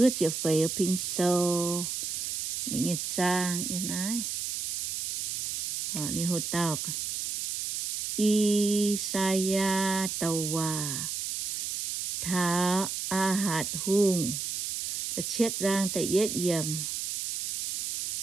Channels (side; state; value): right; noise; hiss, 3 dB below the sound